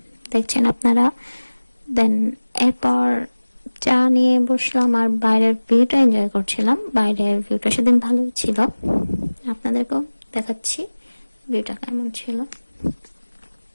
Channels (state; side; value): inverted; both; correlation -1.00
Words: দেখছেন আপনারা। দেন এরপর চা নিয়ে বসলাম আর বাইরের ভিউটা এনজয় করছিলাম। বাইরের ভিউটা সেদিন ভালোই ছিল, আপনাদেরকেও দেখাচ্ছি ভিউটা কেমন ছিল।